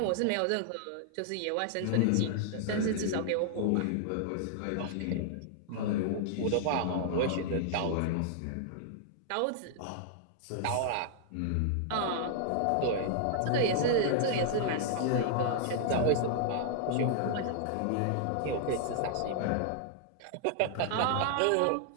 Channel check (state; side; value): different; both; correlation -0.01